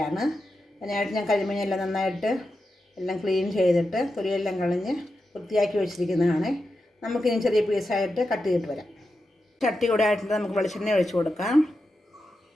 അതിനായിട്ട് ഞാൻ കരിമീനെല്ലാം നന്നായിട്ട് എല്ലാം ക്ലീൻ ചെയ്തിട്ട് തൊലിയെല്ലാം കളഞ്ഞ് വൃത്തിയാക്കി വെച്ചിരിക്കുന്നതാണ്. നമുക്കിനി ചെറിയ പീസായിട്ട് കട്ട് ചെയ്തിട്ട് വരാം. ചട്ടി കൂടെ ആയിട്ട് നമുക്ക് വെളിച്ചെണ്ണ ഒഴിച്ച് കൊടുക്കാം.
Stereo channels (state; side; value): normal; both; correlation 0.89